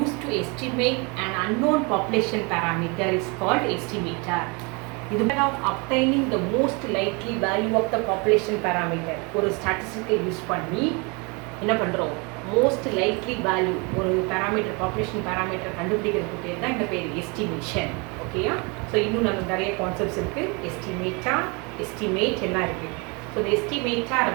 to estimate an unknown population parameter is called estimator. இது of obtaining the most likely value of the population parameter. ஒரு ஸ்டாட்டிஸ்டிக்கை use பண்ணி என்ன பண்ணுறோம், most likely value ஒரு parameter, population parameter கண்டுபிடிக்கிறதுக்கு பேர் தான் இந்த பேர் எஸ்டிமேஷன். ஓகேயா? ஸோ இன்னும் நமக்கு நிறைய கான்செப்ட்ஸ் இருக்குது. எஸ்டிமேட்டார், எஸ்டிமேட் எல்லாம் இருக்குது. ஸோ இந்த எஸ்டிமேட்டார்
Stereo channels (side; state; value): left; quieter; 30.3 dB